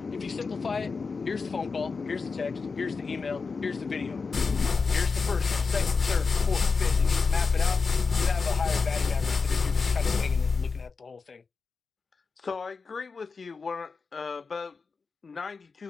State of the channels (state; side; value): quieter; right; 4.7 dB